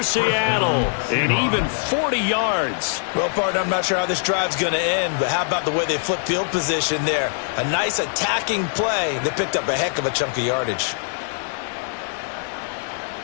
Seattle, and even 40 yards. Well, partner, I'm not sure how this drive's going to end, but how about the way they flip field position there? A nice attacking play. They picked up a heck of a chunk of yardage.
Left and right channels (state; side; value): silent; right; digital silence